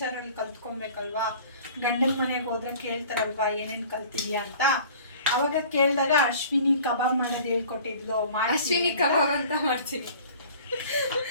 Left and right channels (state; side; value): inverted; both; correlation -0.46